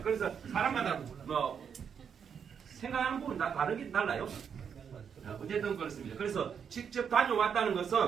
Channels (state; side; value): quieter; left; 7.3 dB